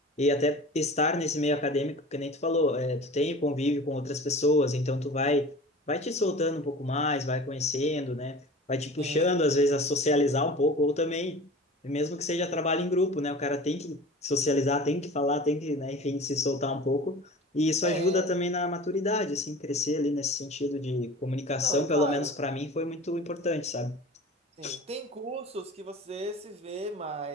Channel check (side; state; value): both; normal; correlation 0.39